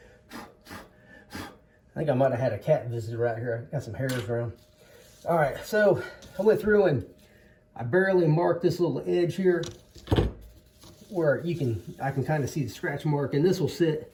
I think I might have had a cat visitor right here. I got some hairs around. All right, so I went through and I barely marked this little edge here where I can kind of see the scratch mark, and this will sit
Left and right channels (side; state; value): both; identical; correlation 1.00